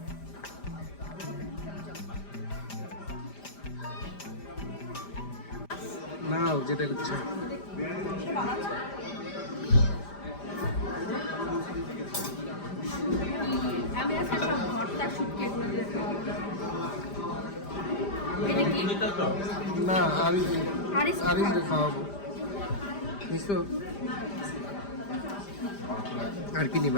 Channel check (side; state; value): right; late; 5.0 ms